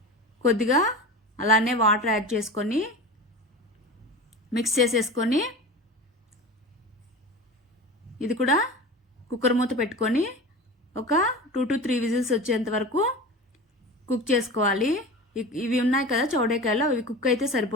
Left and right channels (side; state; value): both; normal; correlation 0.31